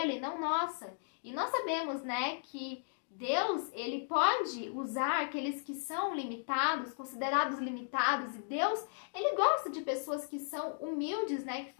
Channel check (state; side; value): silent; right; digital silence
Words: não nossa. E nós sabemos, né, que Deus, ele pode usar aqueles que são limitados, considerados limitados, e Deus, ele gosta de pessoas que são humildes, né, que